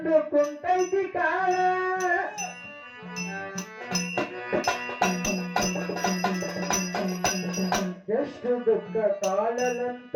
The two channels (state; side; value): identical; both; correlation 1.00